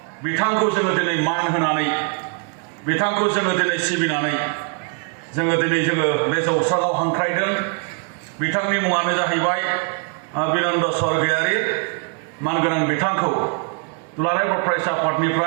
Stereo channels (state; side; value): quieter; left; 37.1 dB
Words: बिथांखौ जोङो दिनै मान होनानै, बिथांखौ जोङो दिनै सिबिनानै जोङो बे जौस्राङाव हांख्रायदों। बिथांनि मुङानो जाहैबाय बिनन्द स्वर्गियारि। मानगोनां बिथांखौ दुलाराय बर' फरायसा